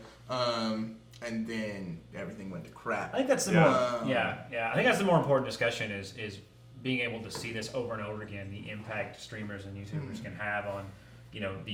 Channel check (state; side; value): identical; both; correlation 1.00